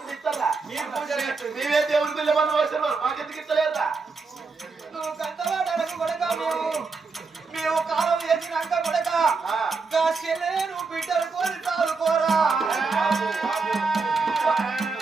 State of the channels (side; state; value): left; quieter; 4.4 dB